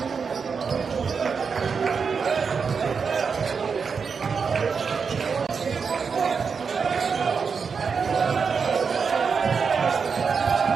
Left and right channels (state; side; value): quieter; left; 5.7 dB